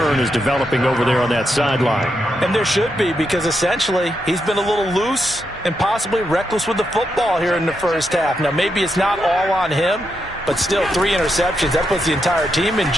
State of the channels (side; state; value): both; normal; correlation 0.83